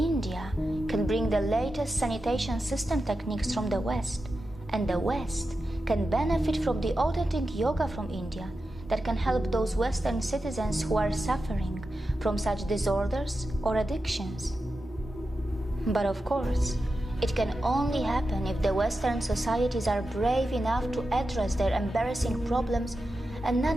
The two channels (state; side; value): normal; both; correlation 0.91